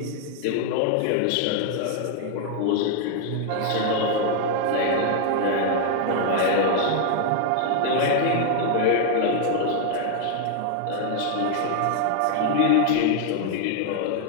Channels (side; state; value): both; different; correlation 0.00